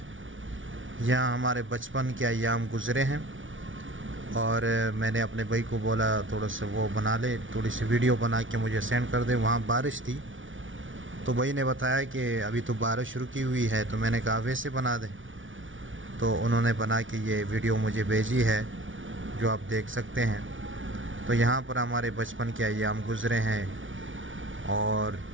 यहाँ हमारे बचपन के अयाम गुज़रे हैं और मैंने अपने भाई को बोला थोड़ा सा वो बना ले, थोड़ी सी वीडियो बना के मुझे सेंड कर दे। वहाँ बारिश थी तो भाई ने बताया कि अभी तो बारिश रुकी हुई है, तो मैंने कहा वैसे बना दें। तो उन्होंने बना के ये वीडियो मुझे भेजी है जो आप देख सकते हैं। तो यहाँ पर हमारे बचपन के अयाम गुज़रे हैं और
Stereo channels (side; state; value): left; late; 0.56 ms